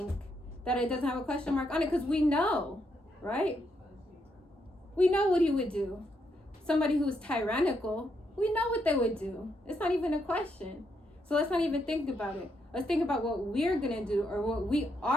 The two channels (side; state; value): both; normal; correlation 0.78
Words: that it doesn't have a question mark on it because we know, right? We know what he would do. somebody who's tyrannical, we know what they would do. It's not even a question. So let's not even think about it. Let's think about what we're going to do or what we